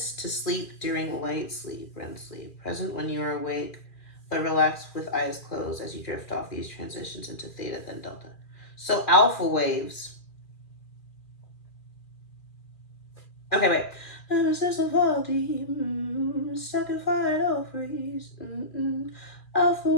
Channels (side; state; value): right; late; 2.4 ms